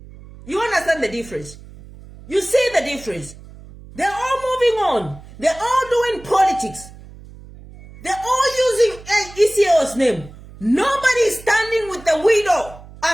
You understand the difference? You see the difference? They're all moving on. They're all doing politics. They're all using ECO's name. Nobody is standing with the widow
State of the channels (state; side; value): noise; right; hum, 19 dB below the sound